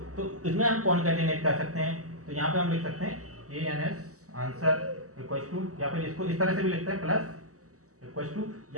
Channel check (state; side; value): late; left; 0.66 ms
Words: तो इसमें हम कॉन्कैटिनेट कर सकते हैं। तो यहाँ पे हम लिख सकते हैं ANS आंसर इक्वल टू, या फिर इसको इस तरह से भी लिखते हैं प्लस इक्वल टू,